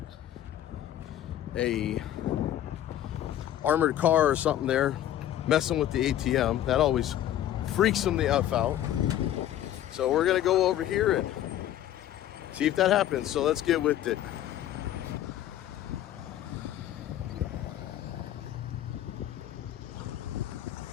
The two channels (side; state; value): right; quieter; 12.1 dB